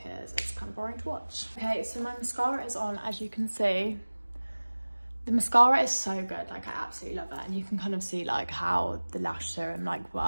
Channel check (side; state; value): both; inverted; correlation -1.00